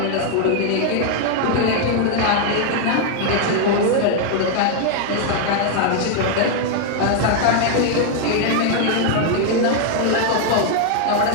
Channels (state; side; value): different; both; correlation 0.00